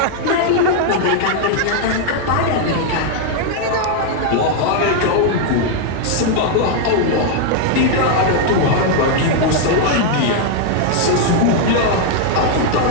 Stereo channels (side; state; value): both; different; correlation 0.00